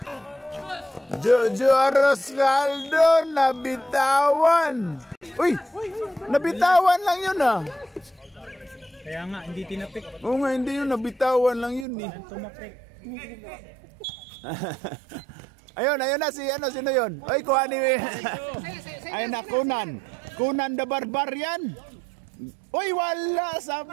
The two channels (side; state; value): left; drops out; at 11.9 s